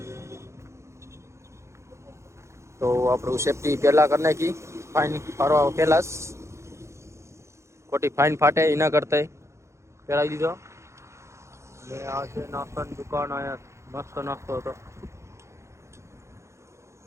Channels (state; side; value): late; left; 0.14 ms